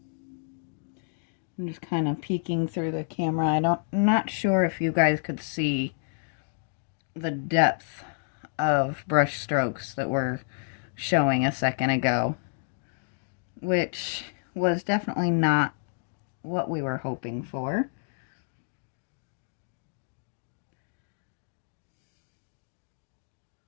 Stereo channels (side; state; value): right; silent; digital silence